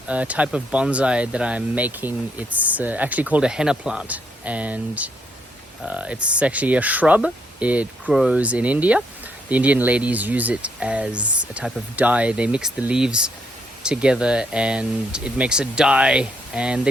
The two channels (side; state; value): both; normal; correlation 0.74